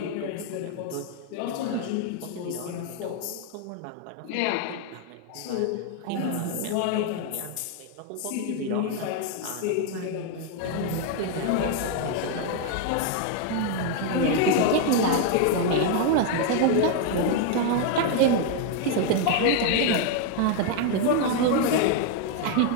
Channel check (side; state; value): both; different; correlation 0.01